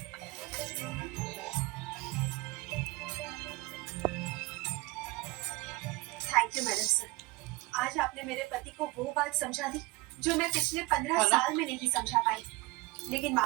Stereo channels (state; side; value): quieter; left; 23.5 dB